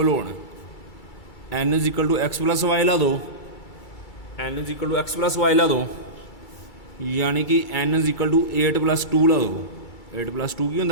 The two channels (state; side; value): late; right; 2.3 ms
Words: होन n is equal to x plus y ला दो n is equal to x plus y ला दो यानी कि एन इज इक्वल टू 8 + 2 ला दो 8 + 2 की